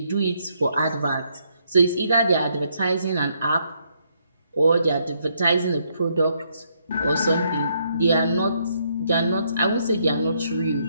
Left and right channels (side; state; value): both; inverted; correlation -0.74